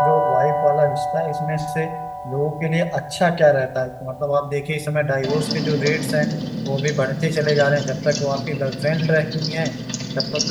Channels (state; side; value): identical; both; correlation 1.00